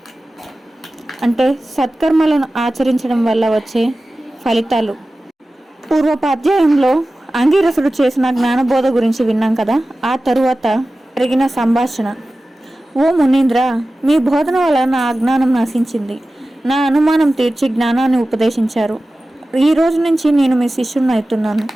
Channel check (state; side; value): normal; both; correlation 0.95